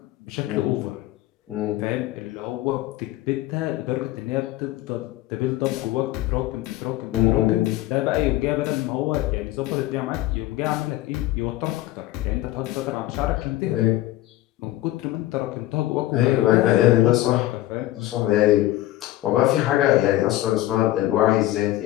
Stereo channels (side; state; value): right; quieter; 15.7 dB